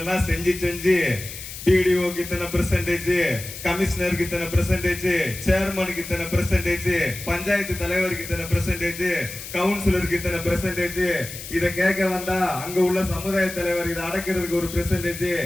செஞ்சு செஞ்சு பிடிஓக்கு இத்தனை பெர்சன்டேஜ், கமிஷனருக்கு இத்தனை பெர்சன்டேஜ், சேர்மனுக்கு இத்தனை பெர்சன்டேஜ், பஞ்சாயத்து தலைவருக்கு இத்தனை பெர்சன்டேஜ், கவுன்சிலருக்கு இத்தனை பெர்சன்டேஜ், இதை கேட்க வந்தா அங்க உள்ள சமுதாய தலைவர் இதை அடக்கிறதுக்கு ஒரு பெர்சன்டேஜ்,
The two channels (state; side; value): noise; left; hiss, 11 dB below the sound